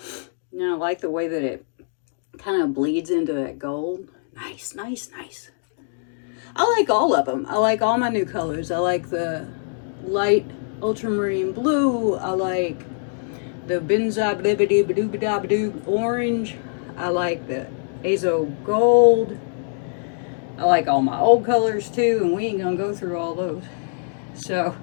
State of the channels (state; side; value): silent; right; digital silence